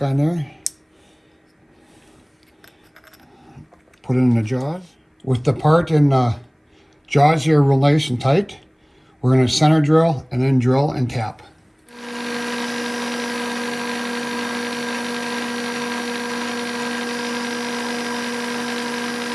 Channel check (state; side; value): identical; both; correlation 1.00